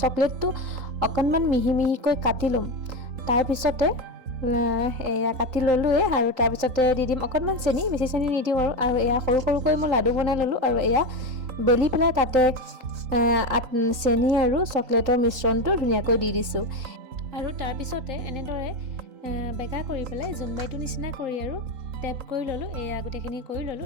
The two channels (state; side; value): late; left; 3.8 ms